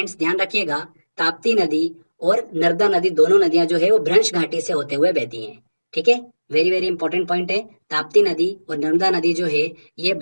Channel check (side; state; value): both; inverted; correlation -1.00